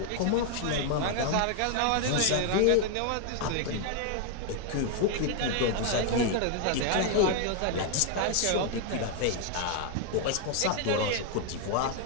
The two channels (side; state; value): both; different; correlation 0.00